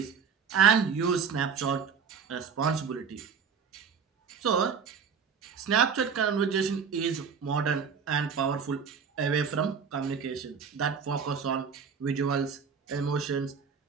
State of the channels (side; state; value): left; quieter; 6.4 dB